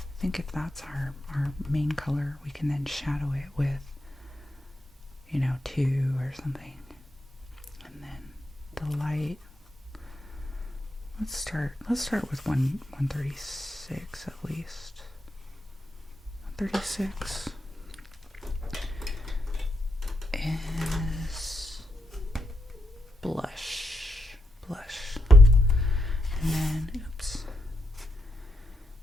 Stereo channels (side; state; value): both; normal; correlation 0.82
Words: think if that's our main color, we can then shadow it with, 2 or something. And then the light, let's start with 136 at least. 136 is blush. And then,